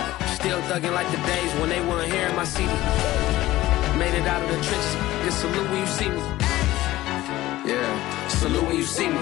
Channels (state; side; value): quieter; right; 16.5 dB